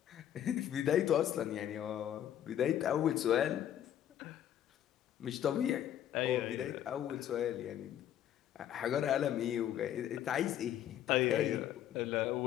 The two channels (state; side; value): quieter; right; 10.9 dB